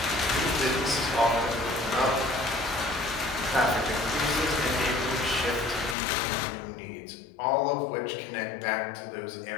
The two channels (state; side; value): drops out; right; at 6.0 s